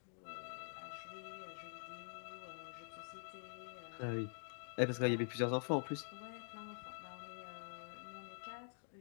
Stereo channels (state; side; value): silent; right; digital silence